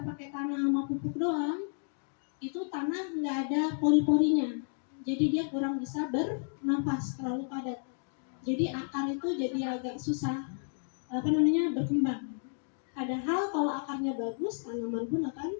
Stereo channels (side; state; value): right; silent; 56 dB below the other